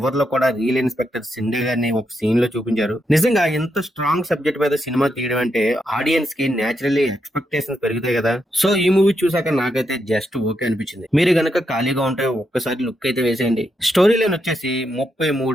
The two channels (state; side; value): normal; both; correlation 0.82